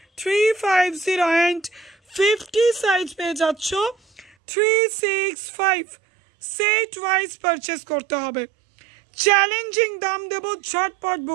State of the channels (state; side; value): drops out; left; at 4.3 s